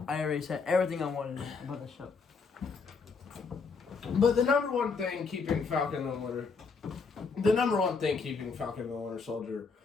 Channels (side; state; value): right; quieter; 4.9 dB